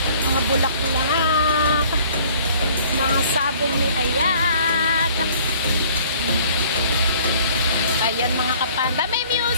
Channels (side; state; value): both; inverted; correlation -0.54